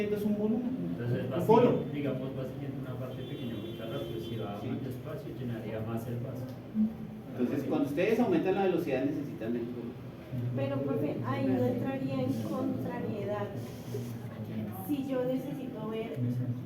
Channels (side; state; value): both; identical; correlation 1.00